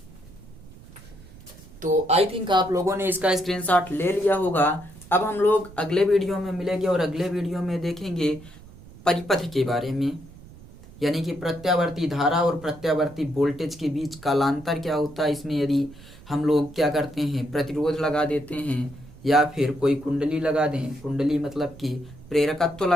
तो आई थिंक आप लोगों ने इसका स्क्रीनशॉट ले लिया होगा। अब हम लोग अगले वीडियो में मिलेंगे और अगले वीडियो में देखेंगे परिपथ के बारे में, यानी कि प्रत्यावर्ती धारा और प्रत्यावर्ती वोल्टेज के बीच कालांतर क्या होता है। इसमें यदि हम लोग क्या करते हैं, प्रतिरोध लगा देते हैं या फिर कोई कुंडली लगा दें, कुंडली मतलब कि प्रेरकत्व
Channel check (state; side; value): noise; right; rumble, 20 dB below the sound